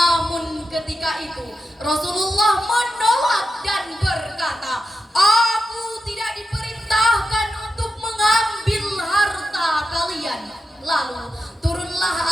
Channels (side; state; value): both; normal; correlation 0.89